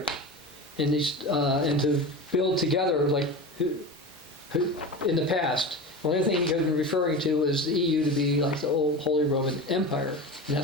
and to build together like in the past. The only thing he had been referring to is the EU to be like the old Holy Roman Empire, and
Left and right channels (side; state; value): both; normal; correlation 0.28